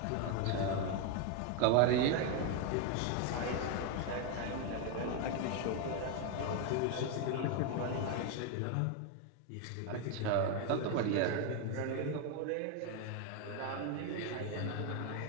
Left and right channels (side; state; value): both; different; correlation 0.01